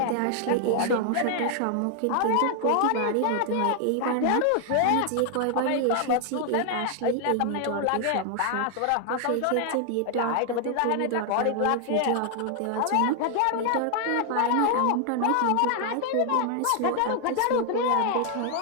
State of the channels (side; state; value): both; different; correlation 0.00